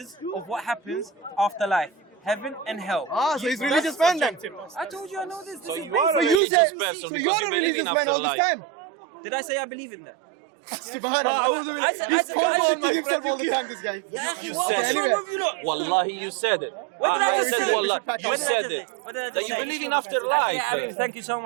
of what happens after life. Heaven and hell. Ah, so he's religious man then. I told you I know this. This So is you are So a basic. you religious say, person so because you're you a believe religious in man all this afterlife. time. Did I say I believe in that? Subhanallah. I said- He's contradicting himself all the time, this guy. Yeah, Okay, what's anyway. wrong with you lot? Wallahi, you said it. What did I we just should- say? we should pack up What did I now. just say? What did I That just you say? believe in afterlife. Yeah, I mean, thank you so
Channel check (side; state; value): left; drops out; at 6.4 s